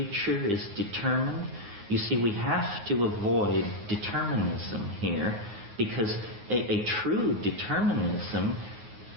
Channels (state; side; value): late; left; 9.5 ms